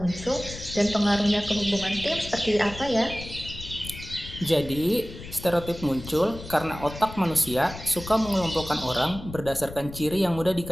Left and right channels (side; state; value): left; noise; rumble, 13 dB below the sound